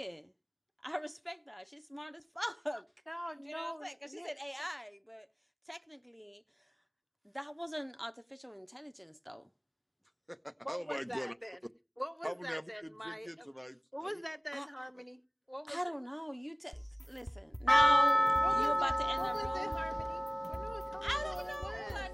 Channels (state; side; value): identical; both; correlation 1.00